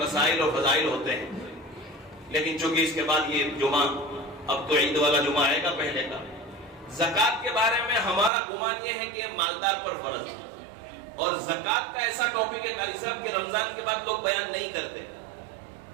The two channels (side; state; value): left; drops out; at 8.3 s